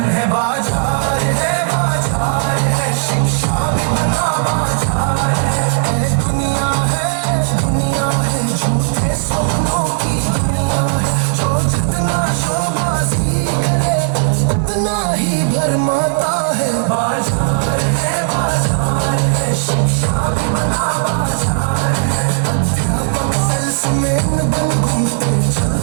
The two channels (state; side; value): silent; left; digital silence